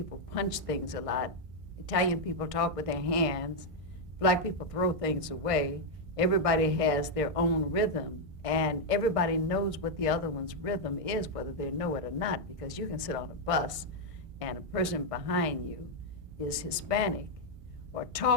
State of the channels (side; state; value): left; late; 1.6 ms